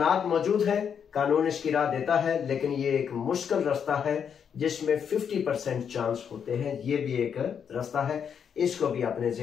मौजूद है, कानून इसकी राह देता है, लेकिन ये एक मुश्किल रास्ता है जिसमें 50% चांस होते हैं। ये भी एक रास्ता है, इसको भी अपने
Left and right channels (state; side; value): quieter; right; 7.5 dB